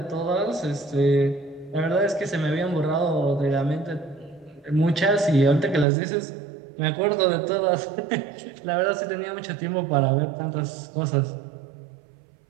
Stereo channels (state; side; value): drops out; left; at 5.9 s